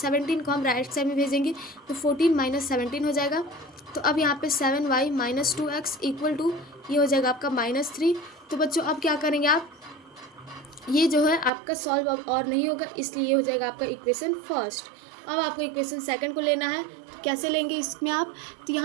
को हम राइट साइड में भेजेंगे तो 14 माइनस 17 हो जाएगा। तो अब यहाँ पे 7y minus 2x equal to ये हो जाएगा आपका -3। तो बच्चों अब क्या करेंगे आप, ये जो है आपका सॉल्व अब और नहीं होगा, इसलिए ये हो जाएगा आपका इक्वेशन फर्स्ट। अब आपको इक्वेशन सेकंड को लेना है। तो कैसे लेंगे इसमें आप, तो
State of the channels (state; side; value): drops out; left; at 11.5 s